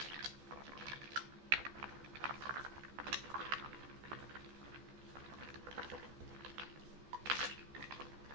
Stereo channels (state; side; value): late; left; 14 ms